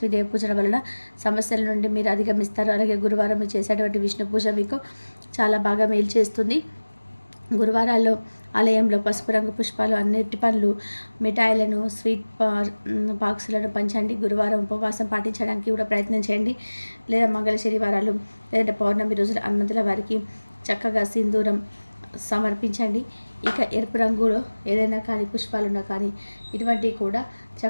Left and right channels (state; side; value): inverted; both; correlation -1.00